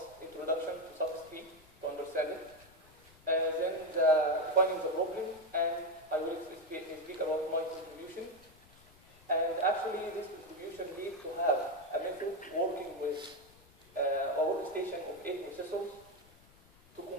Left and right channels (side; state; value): left; noise; rumble, 26 dB below the sound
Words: introduction to Suffix to understand it, then defining the problem, and I will speak about my contribution. And actually, this contribution leads to have a method working with a workstation of 8 processors to